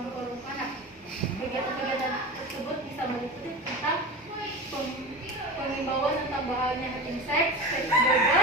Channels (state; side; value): normal; both; correlation 0.27